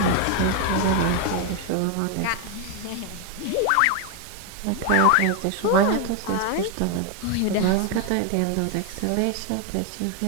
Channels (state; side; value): different; both; correlation 0.01